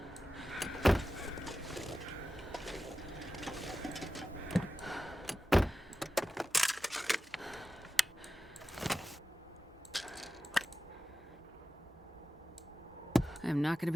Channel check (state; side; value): normal; both; correlation 0.94